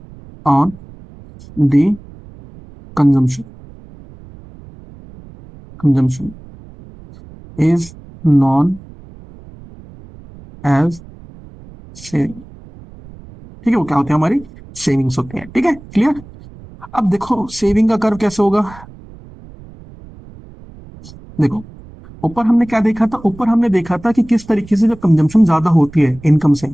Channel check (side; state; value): right; noise; rumble, 20 dB below the sound